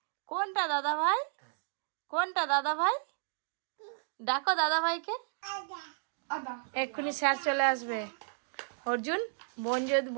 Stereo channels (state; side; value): silent; left; digital silence